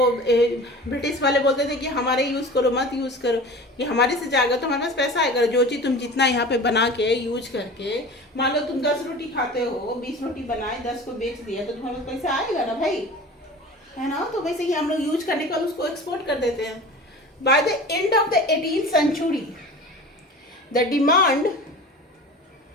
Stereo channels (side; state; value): both; normal; correlation 0.37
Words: ब्रिटिश वाले बोलते थे कि हमारे यूज़ करो, मत यूज़ करो, कि हमारे से जाएगा तो हमारे पास पैसा आएगा। जो चीज़ तुम जितना यहाँ पे बना के यूज करके, मान लो तुम 10 रोटी खाते हो, 20 रोटी बनाए 10 को बेच दिया तो तुम्हारे पास पैसा आएगा ना भाई, है ना। तो वैसे ही हम लोग यूज करने का उसको एक्सपोर्ट कर देते हैं। By the end of the 18th century the demand